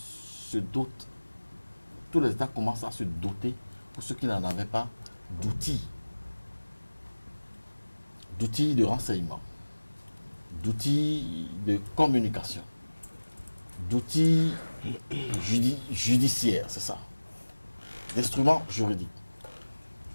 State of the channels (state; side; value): inverted; both; correlation -1.00